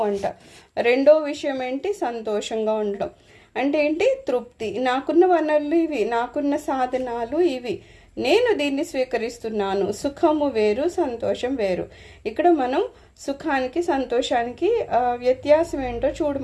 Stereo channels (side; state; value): both; identical; correlation 1.00